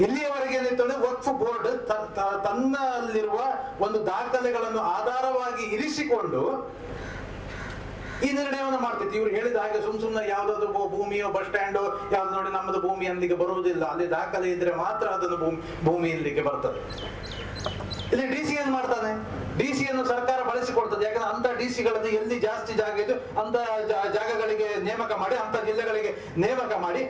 ಇಲ್ಲಿಯವರೆಗೆ ಏನಿತ್ತು, ವಕ್ಫ್ ಬೋರ್ಡ್ ತನ್ನಲ್ಲಿರುವ ಒಂದು ದಾಖಲೆಗಳನ್ನು ಆಧಾರವಾಗಿ ಇರಿಸಿಕೊಂಡು ಈ ನಿರ್ಣಯವನ್ನು ಮಾಡ್ತಿತ್ತು. ಇವ್ರು ಹೇಳಿದ ಹಾಗೆ ಸುಮ್ನೆ ಯಾವ್ದಾದ್ರು ಭೂಮಿಯೋ ಬಸ್ ಸ್ಟ್ಯಾಂಡೋ ಯಾವ್ದು ನೋಡಿ ನಮ್ಮದು ಭೂಮಿ ಅಲ್ಲಿಗೆ ಬರುವುದಿಲ್ಲ, ಅಲ್ಲಿ ದಾಖಲೆ ಇದ್ರೆ ಮಾತ್ರ ಅದನ್ನು ಭೂಮಿ ಇಲ್ಲಿಗೆ ಬರ್ತದೆ. ಇಲ್ಲಿ DC ಏನ್ ಮಾಡ್ತಾನೆ, DC-ಯನ್ನು ಸರ್ಕಾರ ಬಳಸಿಕೊಳ್ತದೆ. ಯಾಕಂದ್ರೆ ಅಂತ DC-ಗಳನ್ನು ಎಲ್ಲಿ ಜಾಸ್ತಿ ಜಾಗ ಇದೆ ಅಂತ ಜಾಗಗಳಿಗೆ ನೇಮಕ ಮಾಡಿ, ಅಂತ ಜಿಲ್ಲೆಗಳಿಗೆ ನೇಮಕ ಮಾಡಿ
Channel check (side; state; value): both; identical; correlation 1.00